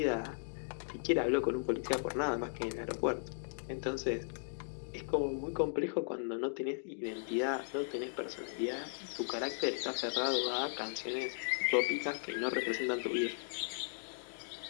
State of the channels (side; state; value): right; silent; digital silence